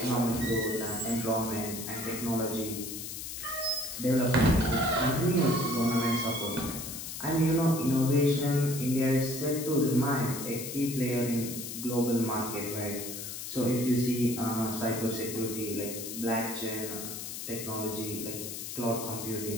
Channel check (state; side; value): noise; left; hiss, 7 dB below the sound